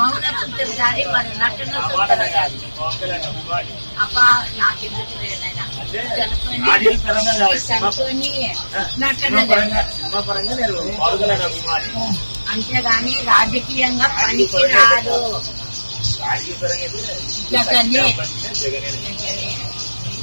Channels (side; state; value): both; inverted; correlation -1.00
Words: చూస్తారు కానీ వాడు నటన చూస్తారు కానీ అబ్బా నాకెందుకు లేదైనా చనుకొని నటన అంతేగాని రాజకీయంగా పనికి రాదు. జగనే